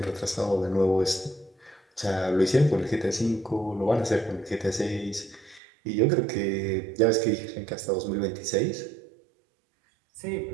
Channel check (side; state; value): left; drops out; at 5.6 s